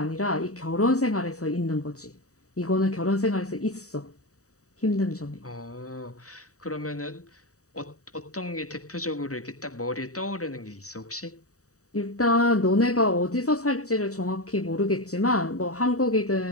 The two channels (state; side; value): late; right; 0.66 ms